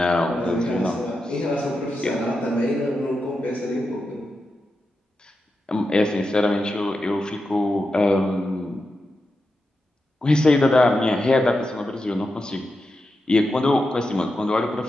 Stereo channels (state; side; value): normal; both; correlation 0.89